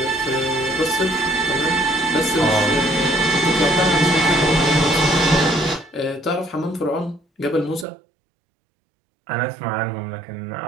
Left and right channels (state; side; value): drops out; left; at 7.9 s